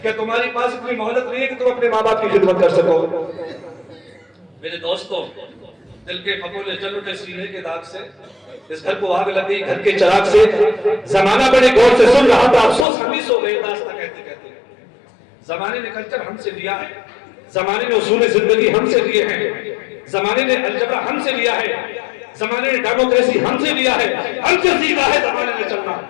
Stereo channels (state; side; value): drops out; right; at 12.9 s